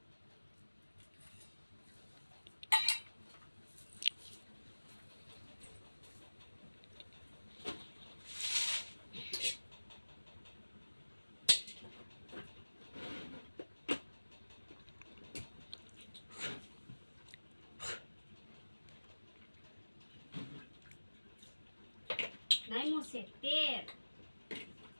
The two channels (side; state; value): both; inverted; correlation -1.00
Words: નાયમું છે તેલ.